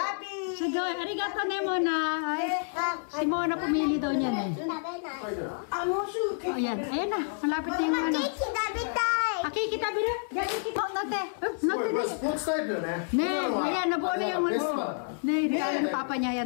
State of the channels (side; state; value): right; silent; 58 dB below the other